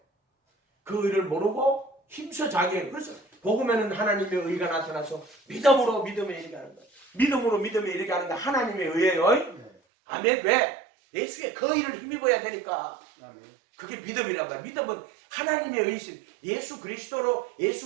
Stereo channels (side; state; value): left; drops out; at 9.8 s